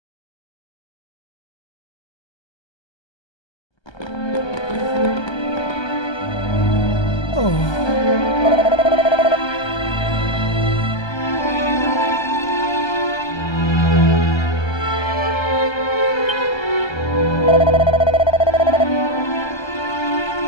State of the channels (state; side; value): late; right; 1.3 ms